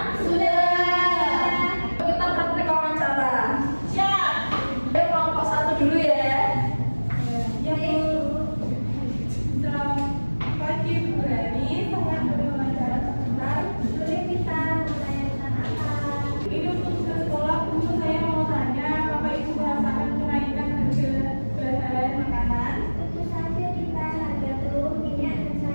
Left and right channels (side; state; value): both; inverted; correlation -1.00